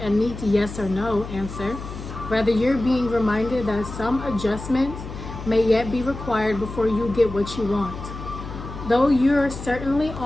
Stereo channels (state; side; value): noise; left; hum, 10 dB below the sound